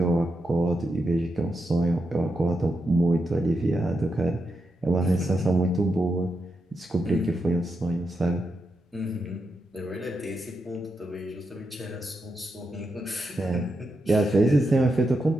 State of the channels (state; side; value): normal; both; correlation 0.85